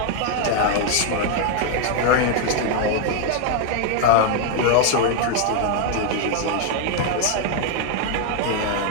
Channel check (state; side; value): different; both; correlation 0.00